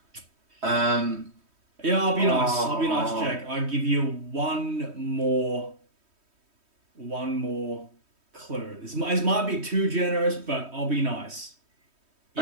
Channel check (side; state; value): left; late; 3.1 ms